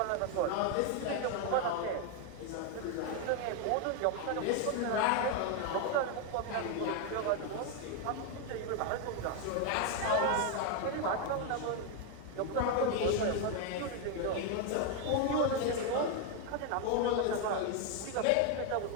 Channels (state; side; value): different; both; correlation 0.01